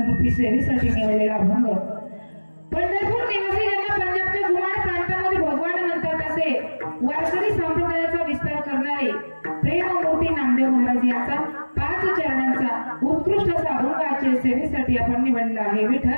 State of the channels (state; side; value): inverted; both; correlation -1.00